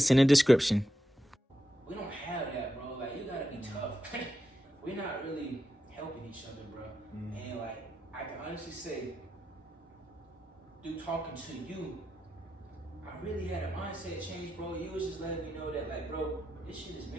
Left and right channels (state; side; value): normal; both; correlation 0.87